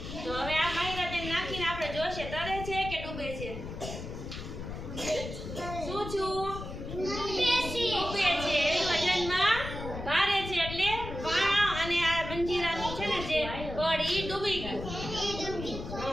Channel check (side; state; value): left; noise; rumble, 8 dB below the sound